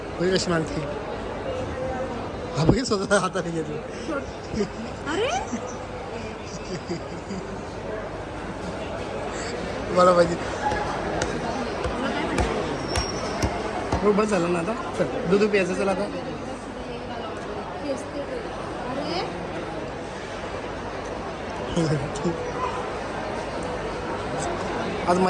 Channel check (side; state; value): both; identical; correlation 1.00